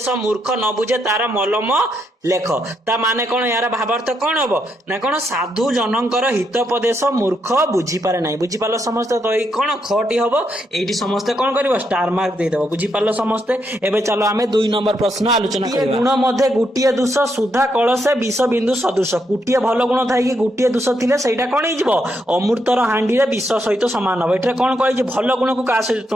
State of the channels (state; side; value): normal; both; correlation 0.79